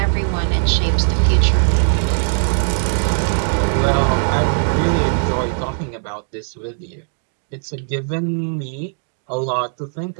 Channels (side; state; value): left; silent; digital silence